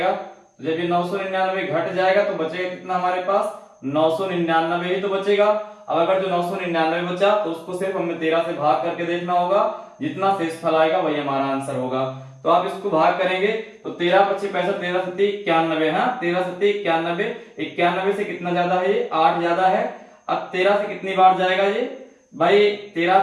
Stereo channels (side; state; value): both; identical; correlation 1.00